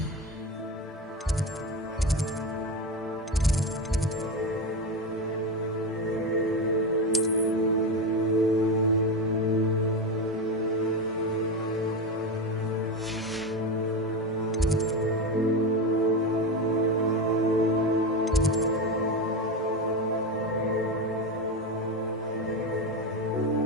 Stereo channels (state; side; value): normal; both; correlation 0.18